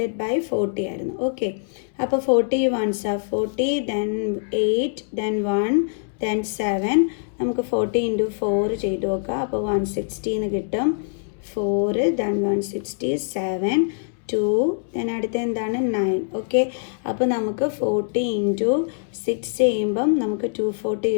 ബൈ 40 ആയിരുന്നു. ഓക്കെ, അപ്പോൾ 40 1s are 40, then 8, then 1, then 7. നമുക്ക് 40 into 4 ചെയ്ത് നോക്കാം. അപ്പോൾ 160 എന്ന് കിട്ടും. 4, ദെൻ 167, 2, ദെൻ അടുത്ത എന്താണ്? 9. ഓക്കെ, അപ്പോൾ നമുക്ക് 40 into 6 ചെയ്യുമ്പം നമുക്ക് 240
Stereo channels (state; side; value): silent; right; 63 dB below the other